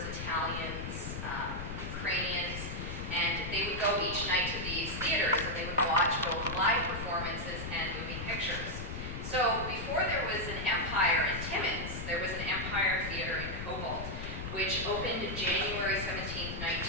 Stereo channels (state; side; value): noise; left; rumble, 6 dB below the sound